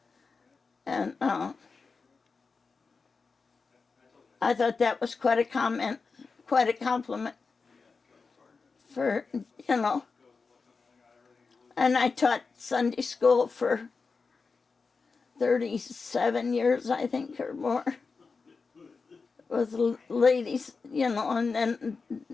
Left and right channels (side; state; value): right; quieter; 4.6 dB